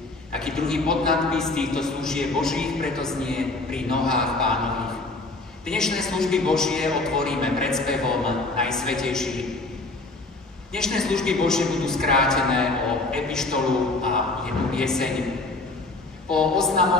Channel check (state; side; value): quieter; right; 3.1 dB